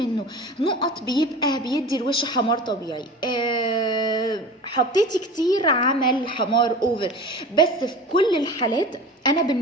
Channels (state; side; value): normal; both; correlation 0.36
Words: نقط بيبقى بيدي الوش حمار طبيعي. حطيتي كتير عمل حمار اوفر. بس في كل الحالات انا